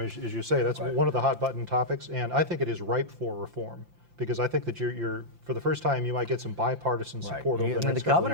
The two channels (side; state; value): left; late; 5.8 ms